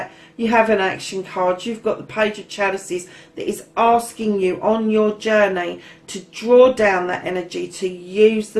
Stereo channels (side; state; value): both; identical; correlation 1.00